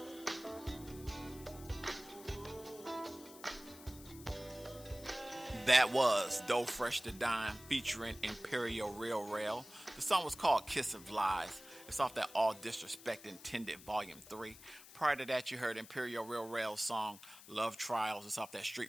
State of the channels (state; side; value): noise; left; hiss, 18 dB below the sound